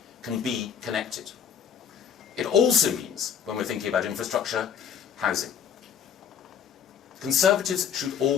can be connected. It also means, when we're thinking about infrastructure, housing. Conservatives should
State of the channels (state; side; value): quieter; right; 8.0 dB